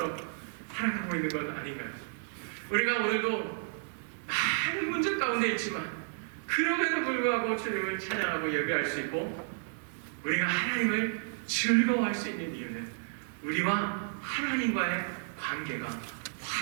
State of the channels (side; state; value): left; silent; digital silence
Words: 살아가고 있는 건 아닌가요? 우리가 오늘도 많은 문제 가운데 있지만 그럼에도 불구하고 주님을 찬양하고 예배할 수 있고 우리가 하나님을 즐거워할 수 있는 이유는 우리와 하나님과의 관계가